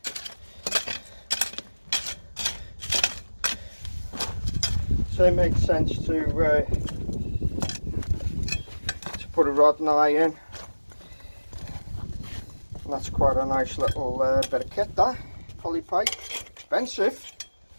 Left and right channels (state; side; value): inverted; both; correlation -1.00